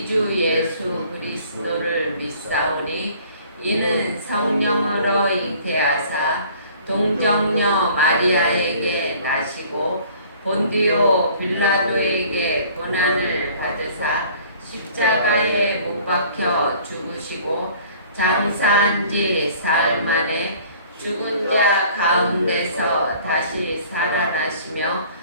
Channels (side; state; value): both; inverted; correlation -0.52